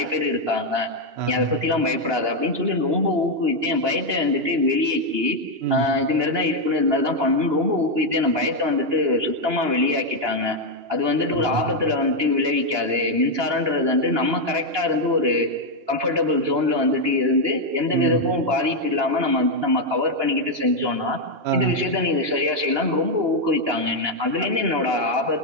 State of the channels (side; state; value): left; late; 2.9 ms